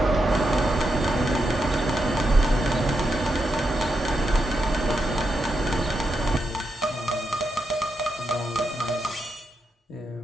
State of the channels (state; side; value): normal; both; correlation 0.84